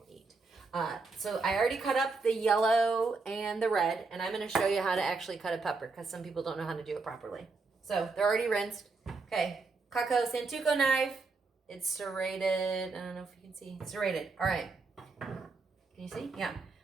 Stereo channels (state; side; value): quieter; left; 4.1 dB